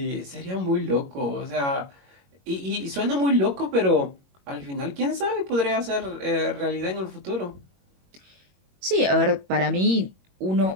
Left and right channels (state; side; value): late; left; 21 ms